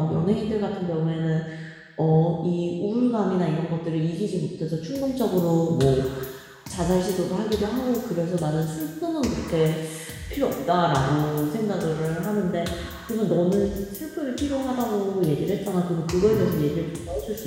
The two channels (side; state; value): both; identical; correlation 1.00